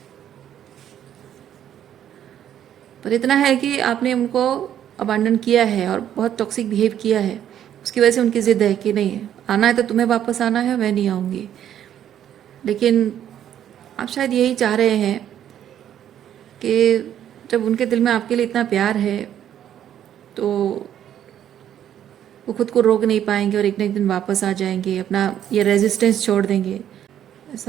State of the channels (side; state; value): left; quieter; 10.4 dB